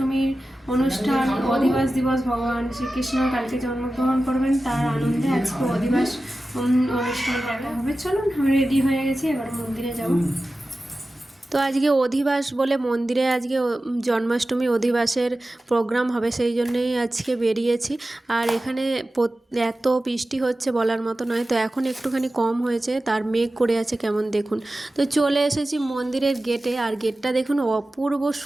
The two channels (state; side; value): normal; both; correlation 0.95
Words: অনুষ্ঠান, অধিবাস দিবস, ভগবান শ্রীকৃষ্ণ কালকে জন্মগ্রহণ করবেন, তার আনন্দে আজকে অধিবাস অনুষ্ঠান দেখা হবে। চলুন, আমি রেডি হয়ে গেছি, এবার মন্দিরে যাব। তো আজকে অধিবাস বলে মন্দিরে আজকে জন্মাষ্টমী অধিবাসের প্রোগ্রাম হবে, সেই জন্যই আজকে বেরিয়েছি। আর এখানে এত বৃষ্টি হচ্ছে বলার মতো নয়, তো এখন একটুখানি কম হয়েছে, তার মেঘ করে আছে কেমন দেখুন। তো চলে এসেছি মন্দিরের গেটে, আর গেটটা দেখুন অপূর্ব